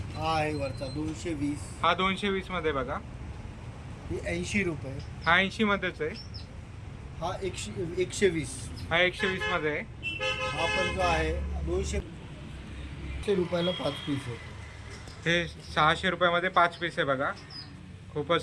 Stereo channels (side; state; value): both; identical; correlation 1.00